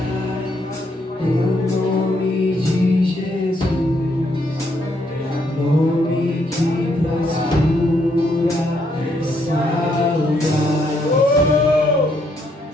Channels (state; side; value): normal; both; correlation 0.73